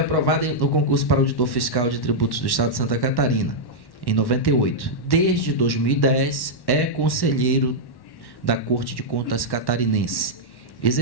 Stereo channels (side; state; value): right; late; 1.1 ms